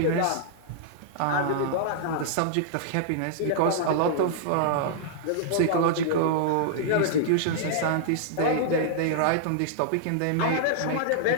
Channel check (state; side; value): different; both; correlation -0.01